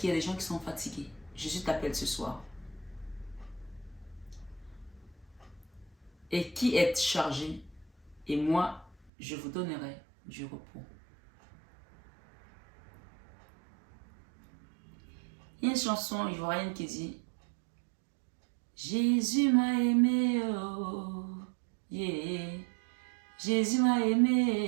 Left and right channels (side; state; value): left; drops out; at 9.1 s